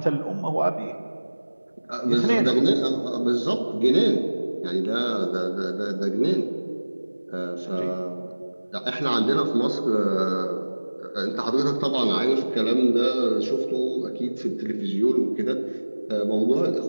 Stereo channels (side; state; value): both; inverted; correlation -1.00